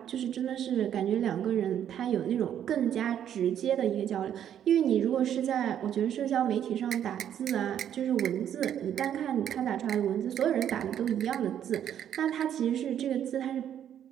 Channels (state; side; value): quieter; left; 9.9 dB